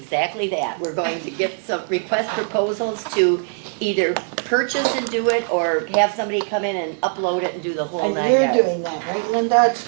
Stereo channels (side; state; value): left; silent; digital silence